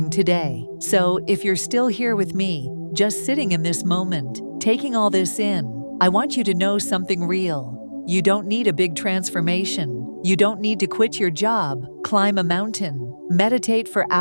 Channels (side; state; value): both; inverted; correlation -1.00